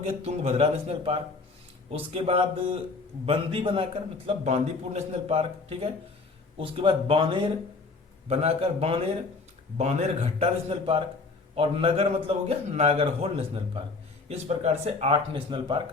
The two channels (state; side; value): quieter; right; 4.0 dB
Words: तुंगभद्रा नेशनल पार्क। उसके बाद बंदी बनाकर मतलब बांदीपुर नेशनल पार्क। ठीक है। उसके बाद बानेर बनाकर बानेर घट्टा नेशनल पार्क। और नगर मतलब हो गया नागरहोल नेशनल पार्क। इस प्रकार से 8 नेशनल